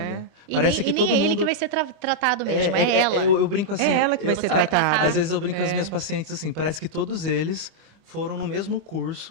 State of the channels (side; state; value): left; late; 25 ms